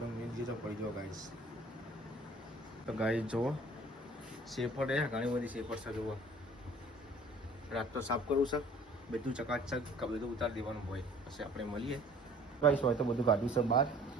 મેન જે તો પડી જો ગાઈસ. તો ગાઈસ જુઓ, શેપટ એ ઘણી બધી શેપટ છે. જુઓ, રાત તો સાફ કરવું છે, બધું ચકાચક બધું ઉતારી દેવાનું હોય. પછી આપણે મળીએ ગાઈસ. હોય તો બધું કાઢ્યું છે બહાર,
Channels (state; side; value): normal; both; correlation 0.51